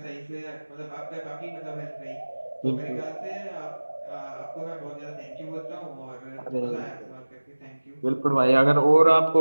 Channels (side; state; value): both; inverted; correlation -1.00